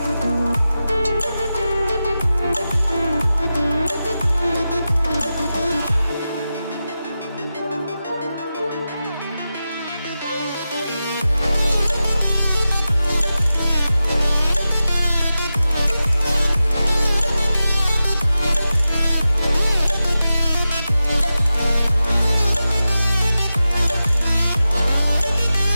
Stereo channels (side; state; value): both; inverted; correlation -0.92